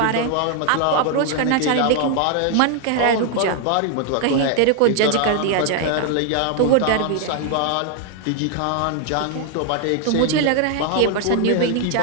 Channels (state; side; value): different; both; correlation 0.00